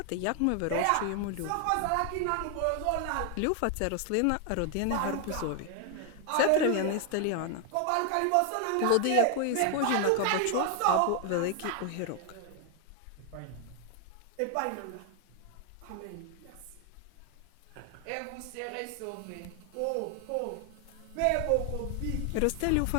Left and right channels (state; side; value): different; both; correlation 0.00